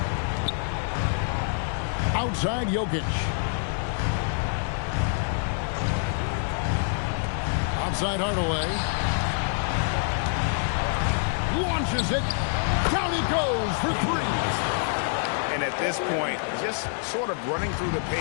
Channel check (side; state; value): right; silent; 61 dB below the other